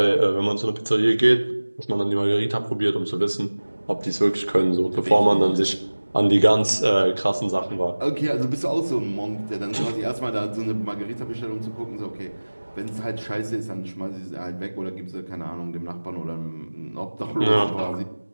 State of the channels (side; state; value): both; inverted; correlation -1.00